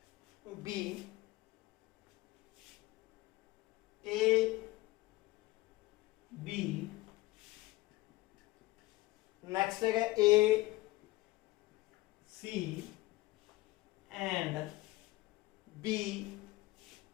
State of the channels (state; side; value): quieter; right; 19.3 dB